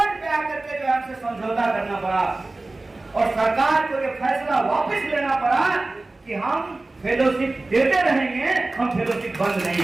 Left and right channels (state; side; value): quieter; left; 3.1 dB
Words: पे आकर के जो हमसे समझौता करना पड़ा और सरकार को ये फैसला वापस लेना पड़ा कि हम फेलोशिप देते रहेंगे, हम फेलोशिप बंद नहीं